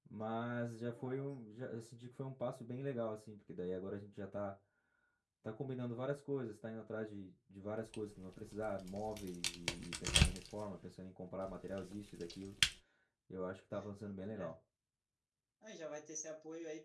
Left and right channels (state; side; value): identical; both; correlation 1.00